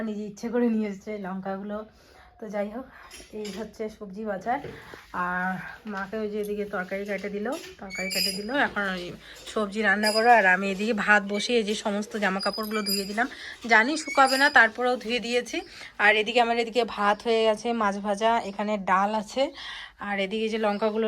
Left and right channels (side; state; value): both; identical; correlation 1.00